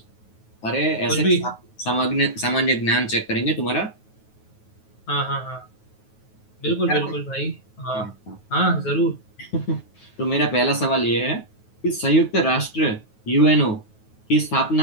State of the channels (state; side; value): late; right; 9.3 ms